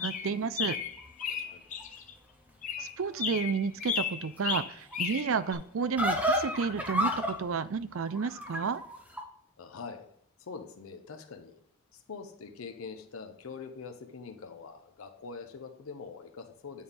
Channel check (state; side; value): normal; both; correlation 0.19